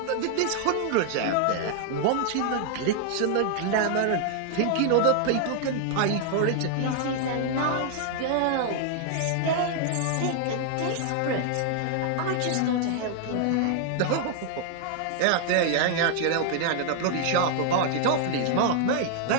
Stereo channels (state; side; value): different; both; correlation 0.00